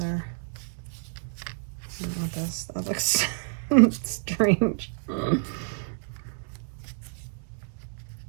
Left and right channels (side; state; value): left; silent; digital silence